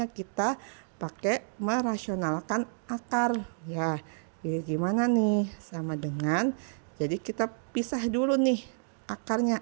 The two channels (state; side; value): silent; left; digital silence